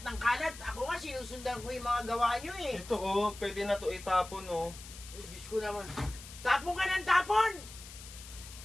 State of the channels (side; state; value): left; noise; hiss, 15 dB below the sound